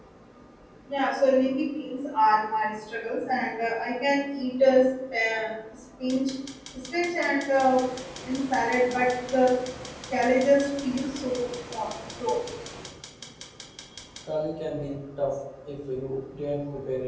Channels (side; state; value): both; identical; correlation 1.00